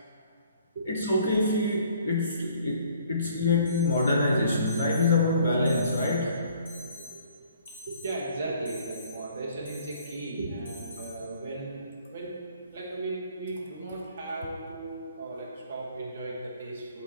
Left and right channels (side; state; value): both; inverted; correlation -0.58